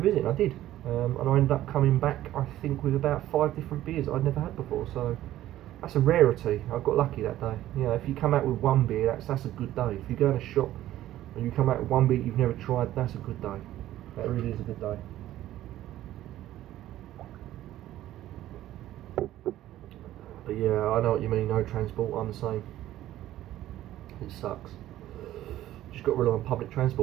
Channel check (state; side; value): quieter; left; 13.9 dB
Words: and I did. And I ended up coming back, I think, with about 5 different beers that I'd never had before. So that's a rarity. I got lucky that day. You know, if you come out with one beer, that's a good day. If you go in a shop and you come out with one beer you've never tried, that's a good day. That really is a good day. But yeah, I know what you mean. No transport. I'm the same. It sucks. Just got to rely on public